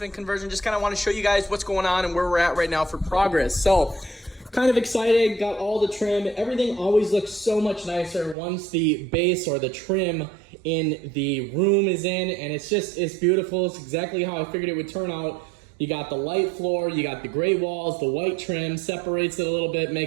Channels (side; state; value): left; drops out; at 8.3 s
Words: conversion. Just kind of want to show you guys what's going on and where we're at right now for progress. So, kind of excited, got all the trim. Everything always looks so much nicer once the base or the trim in the room is in, and it's beautiful. It's exactly how I figured it would turn out. You got the light floor, you got the gray walls, the white trim, separates it a little bit,